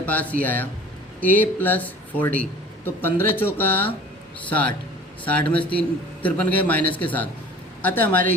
पास ये आया a प्लस 4d, तो 15 चौका 60, 60 में से 53 गए माइनस के 7, अतः हमारे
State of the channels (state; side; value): normal; both; correlation 0.45